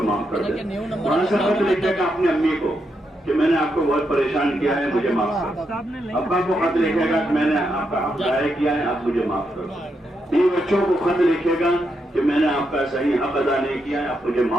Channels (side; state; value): both; normal; correlation 0.82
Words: معاف کر دیں۔ وہاں سے خط لکھے گا اپنی امی کو کہ میں نے آپ کو بہت پریشان کیا ہے، مجھے معاف کر دیں۔ ابا کو خط لکھے گا کہ میں نے آپ کا حق ضائع کیا ہے، آپ مجھے معاف کر دیں۔ بیوی بچوں کو خط لکھے گا کہ میں نے آپ کا صحیح حق ادا نہیں کیا ہے، آپ مجھے